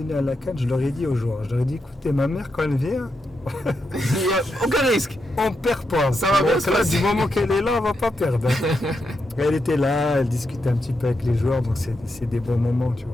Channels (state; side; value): normal; both; correlation 0.84